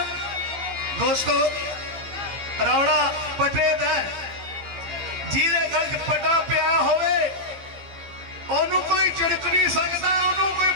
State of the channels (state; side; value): late; left; 15 ms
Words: दोस्तों रौड़ा पटे दा जिहदे गल च पटा पिया होवे ओनू कोई झिड़क नहीं सकता ओनू कोई